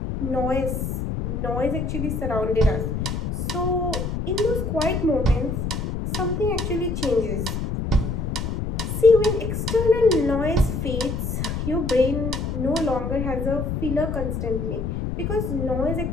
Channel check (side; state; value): left; noise; rumble, 2 dB below the sound